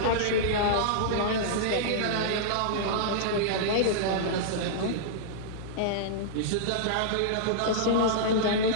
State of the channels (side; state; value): both; different; correlation -0.02